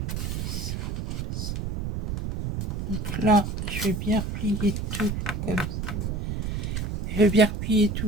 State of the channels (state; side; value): noise; right; rumble, 3 dB below the sound